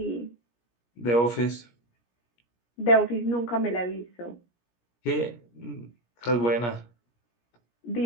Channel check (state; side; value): late; right; 17 ms